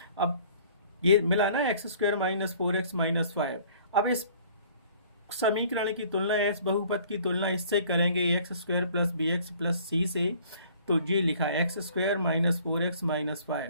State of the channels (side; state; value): both; inverted; correlation -0.54